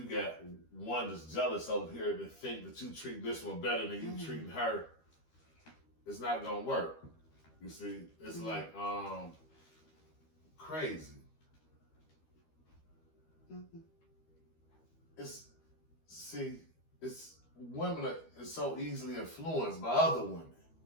got one that's jealous over here that think that you treat this one better than you treating her, it's not gonna work. You see, it's like crazy. It's women are so easily influenced by other women.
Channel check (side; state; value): right; late; 13 ms